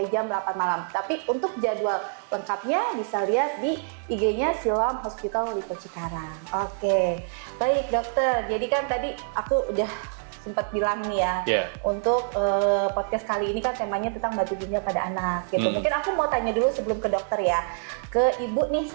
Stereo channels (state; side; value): silent; left; digital silence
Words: jam 8 malam. Tapi untuk jadwal lengkapnya bisa lihat di IG-nya Siloam Hospital Lipo Cikarang. Oke, baik dokter. Jadi kan tadi aku udah sempat bilang nih ya, untuk podcast kali ini kan temanya tentang batu ginjal pada anak gitu. Mungkin aku mau tanya dulu sebelum ke dokter ya, ke ibu nih